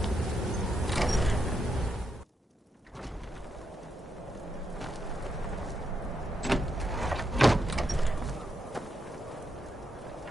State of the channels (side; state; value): both; normal; correlation 0.82